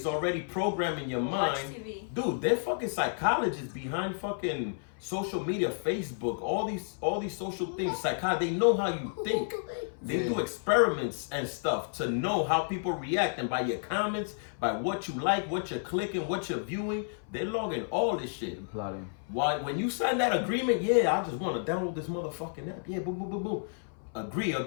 already programming your mind. Dude, they're fucking psychologists behind fucking social media, Facebook, all these social things. They know how you think. They do experiments and stuff to know how people react, and by your comments, by what you like, what you're clicking, what you're viewing, they're logging all this shit. Plotting. Why when you sign that agreement, yeah, I just want to download this motherfucking app. Yeah, boom, boom, boom, boom.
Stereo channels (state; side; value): silent; right; 57 dB below the other